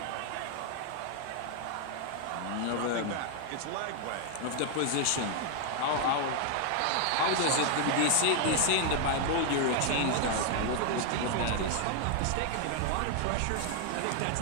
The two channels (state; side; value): different; both; correlation 0.00